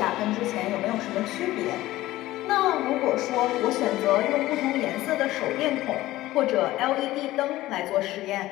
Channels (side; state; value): right; quieter; 16.5 dB